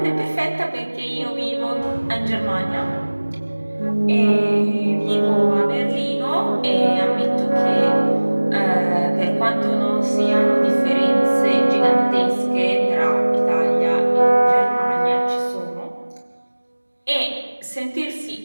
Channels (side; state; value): both; inverted; correlation -1.00